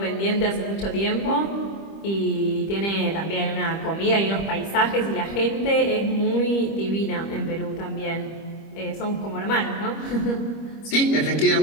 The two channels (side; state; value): right; late; 25 ms